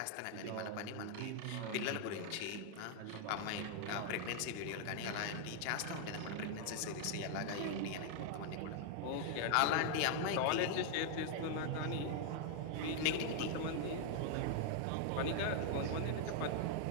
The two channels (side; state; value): both; different; correlation 0.00